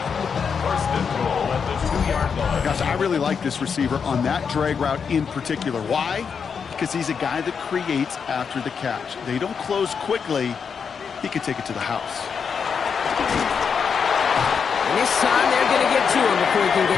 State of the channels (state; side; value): quieter; right; 6.3 dB